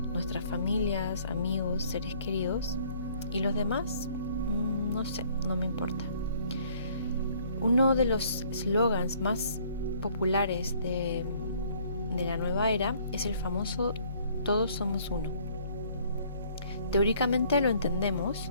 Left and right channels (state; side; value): inverted; both; correlation -0.60